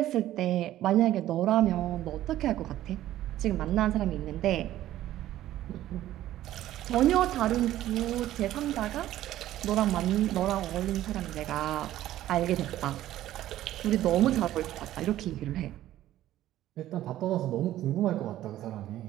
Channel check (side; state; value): left; quieter; 13.7 dB